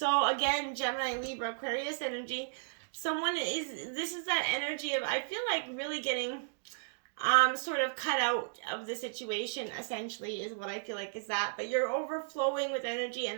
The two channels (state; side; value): silent; left; digital silence